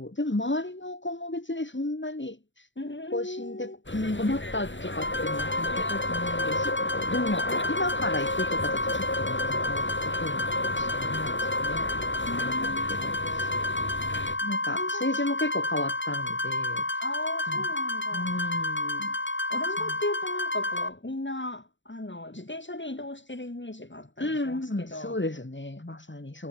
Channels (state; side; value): late; right; 0.54 ms